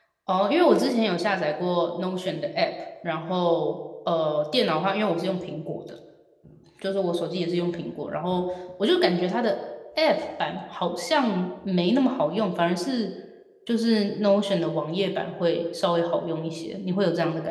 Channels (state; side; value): identical; both; correlation 1.00